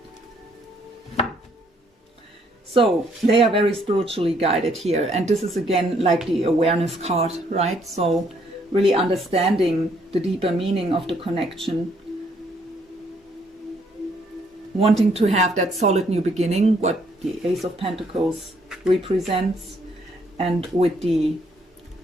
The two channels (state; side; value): normal; both; correlation 0.68